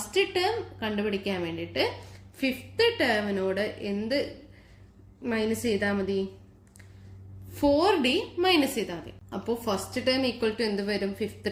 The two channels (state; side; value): identical; both; correlation 1.00